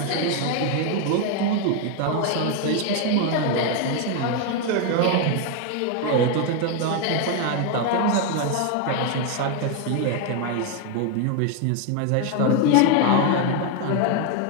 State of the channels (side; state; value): both; different; correlation 0.01